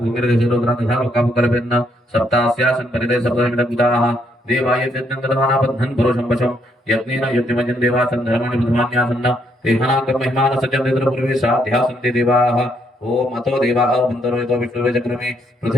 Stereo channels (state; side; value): normal; both; correlation 0.73